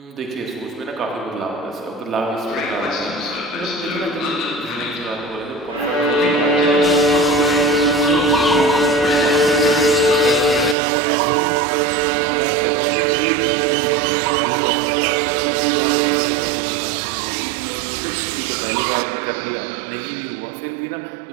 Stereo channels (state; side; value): drops out; left; at 10.8 s